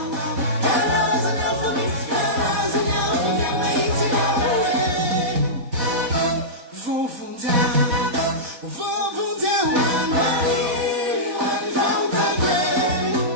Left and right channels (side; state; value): left; late; 4.1 ms